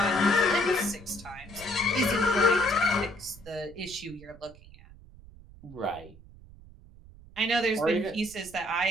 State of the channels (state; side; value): noise; right; rumble, 21 dB below the sound